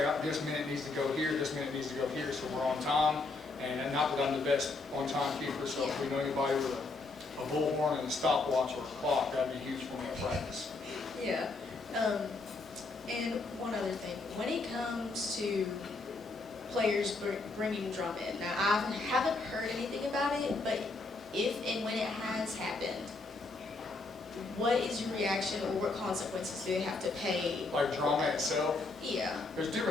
this minute needs to go here, this minute needs to go here, so we're on time. And not that I'm the best on-time keeper, so if we know anybody with a bullhorn and a stopwatch or a clock, that'd be huge for me at practice. Yeah. And one other thing, when it comes to players bringing drum in, now I haven't heard anything about it, but if and when it has happened, what is your reaction, or what consequences do they have to pay? Like drama itself? Yeah. There's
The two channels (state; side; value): quieter; right; 3.5 dB